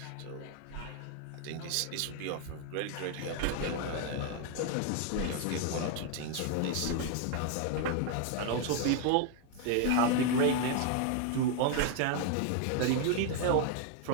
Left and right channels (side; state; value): both; different; correlation 0.00